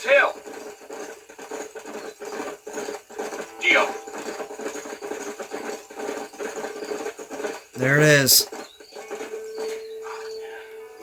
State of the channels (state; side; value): identical; both; correlation 1.00